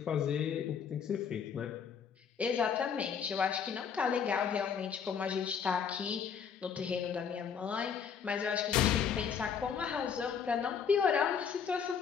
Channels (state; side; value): quieter; right; 7.0 dB